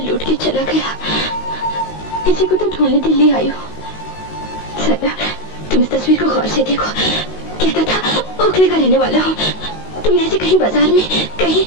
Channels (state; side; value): late; right; 19 ms